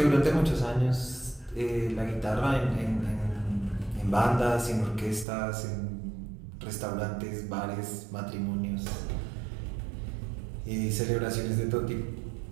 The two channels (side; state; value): left; drops out; at 5.2 s